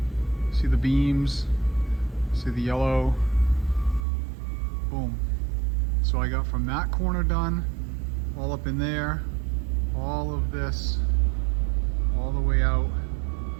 See the beams, see the yellow, boom. So I got from that corner done, all up in there, all of this, all the way out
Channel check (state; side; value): drops out; left; at 4.0 s